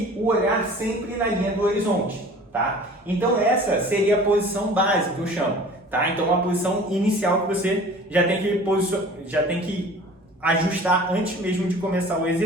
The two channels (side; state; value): both; normal; correlation 0.45